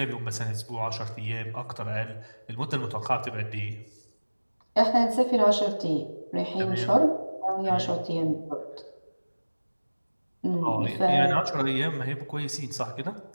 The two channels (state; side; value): inverted; both; correlation -1.00